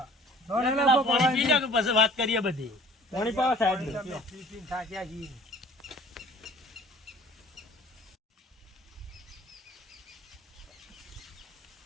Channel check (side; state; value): both; normal; correlation 0.50